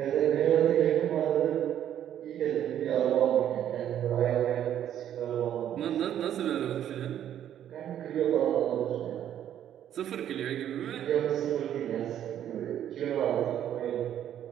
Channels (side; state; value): left; quieter; 10.6 dB